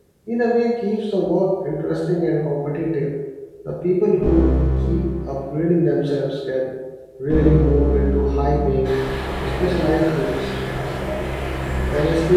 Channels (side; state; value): both; identical; correlation 1.00